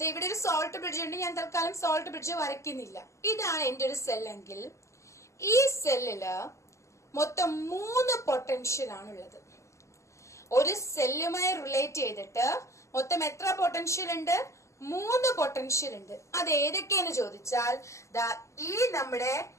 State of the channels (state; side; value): late; right; 0.14 ms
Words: ഇവിടെ ഒരു സോൾട്ട് ബ്രിഡ്ജ് ഉണ്ട്. ഞാൻ തൽക്കാലം സോൾട്ട് ബ്രിഡ്ജ് വരയ്ക്കുന്നില്ല. ഇതാണ് എന്റെ ഒരു സെൽ എങ്കിൽ ഈ സെല്ലില് മൊത്തം 3 പൊട്ടൻഷ്യൽ ആണുള്ളത്. ഒരു സെല്ലുമായി റിലേറ്റ് ചെയ്തിട്ട് മൊത്തം എത്ര പൊട്ടൻഷ്യൽ ഉണ്ട്? 3 പൊട്ടൻഷ്യൽ ഉണ്ട്. അത് ഏതൊക്കെയെന്ന് ചോദിച്ചാൽ ഈ നമ്മുടെ